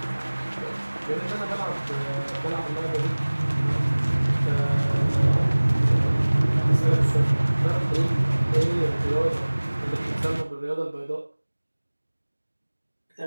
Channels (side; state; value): both; inverted; correlation -1.00